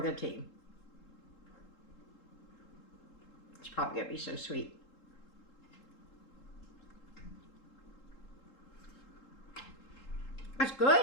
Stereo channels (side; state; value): right; late; 3.7 ms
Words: the team. It's probably going to be so sweet. That's good.